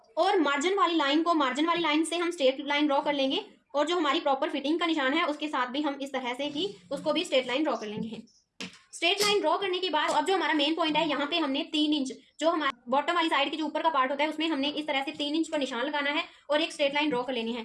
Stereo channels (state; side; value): identical; both; correlation 1.00